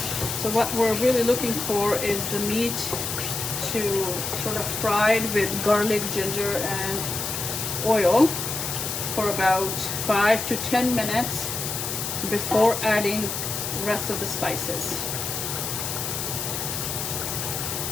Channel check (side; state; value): left; noise; hiss, 3 dB below the sound